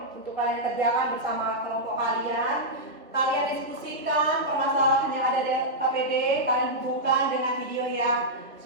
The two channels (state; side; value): normal; both; correlation -0.08